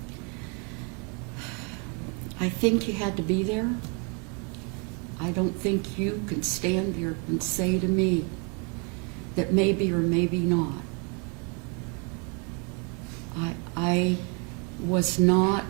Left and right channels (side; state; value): left; quieter; 35.3 dB